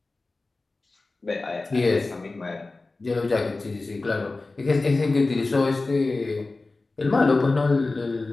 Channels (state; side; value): quieter; right; 3.4 dB